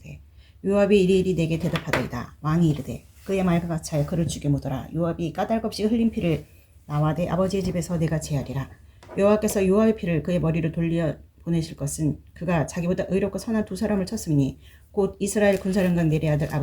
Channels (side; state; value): both; identical; correlation 1.00